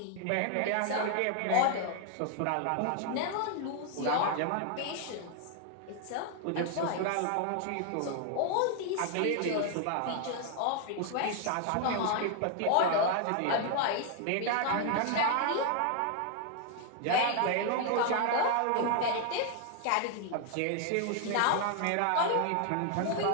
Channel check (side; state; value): both; different; correlation 0.00